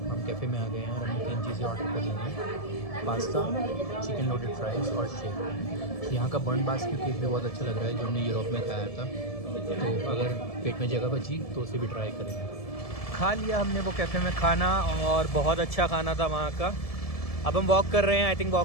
हम कैफ़े में आ गए हैं और हमने 3 चीज़ें ऑर्डर कर ली हैं, पास्ता, चिकन लोडेड फ्राइज़ और शेक। यहाँ का बर्न बास्क्यू केक भी बहुत अच्छा लग रहा है जो हमने यूरोप में खाया था, तो अगर पेट में जगह बची तो उसे भी ट्राई करेंगे। खा लिया हमने वो कैफ़े में खाना, और बहुत अच्छा खाना था वहाँ का। अब हम वॉक कर रहे हैं, आई थिंक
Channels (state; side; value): late; right; 1.7 ms